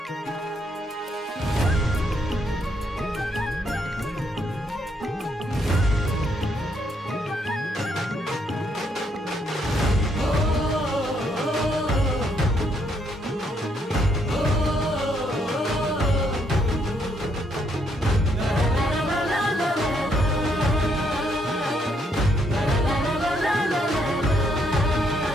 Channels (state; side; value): normal; both; correlation 0.73